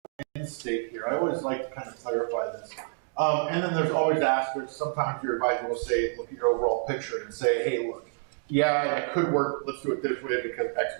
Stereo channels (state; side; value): silent; left; 57 dB below the other